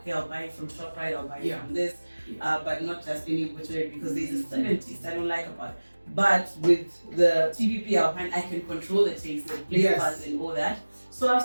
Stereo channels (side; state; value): both; inverted; correlation -1.00